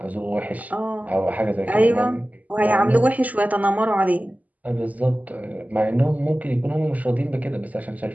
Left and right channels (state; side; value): late; left; 0.076 ms